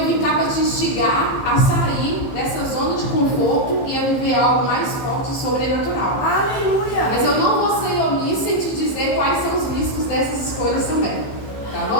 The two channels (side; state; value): right; late; 15 ms